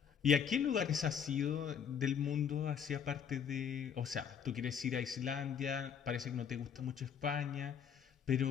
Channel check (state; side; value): quieter; right; 7.7 dB